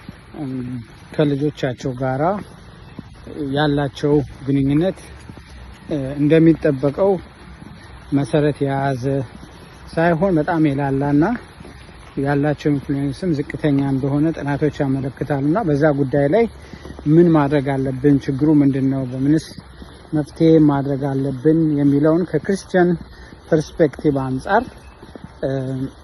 ከልጆቻቸው ጋራ ያላቸው ግንኙነት እንደሚጠበቀው መሰረት የያዘ ሳይሆን በጣም የላላና ያላቸው ኢንፍሉዌንስም ዝቅተኛ እንደሆነ ጥናቶች ያመለክታሉና በዛ ጉዳይ ላይ ምን ማድረግ አለብን፣ ችግሩ ምንድነው፣ በምንስ መፍትሄ ማድረግ አለብን የሚለውን ከክርስቲያን ፐርስፔክቲቭ አንጻር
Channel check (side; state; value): both; identical; correlation 1.00